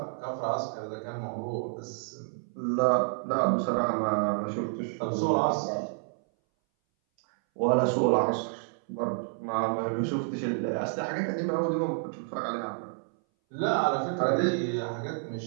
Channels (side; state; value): left; silent; 58 dB below the other